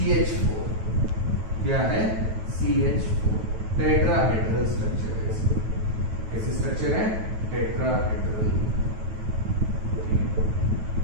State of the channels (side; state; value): left; late; 9.2 ms